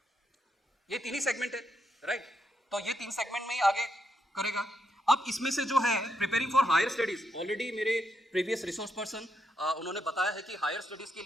ये तीन ही सेगमेंट है, राइट? तो ये तीन सेगमेंट में ही आगे करेगा। अब इसमें से जो है preparing for higher studies, already मेरे प्रीवियस रिसोर्स पर्सन उन्होंने बताया है कि हायर स्टडीज के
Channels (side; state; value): both; normal; correlation 0.81